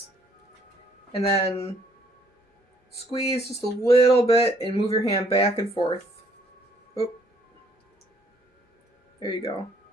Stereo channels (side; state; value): both; normal; correlation 0.65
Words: and then squeeze just a little bit and move your hand back and forth. Oop. There you go.